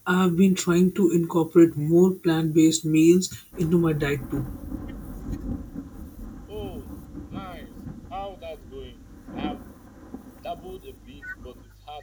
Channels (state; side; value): identical; both; correlation 1.00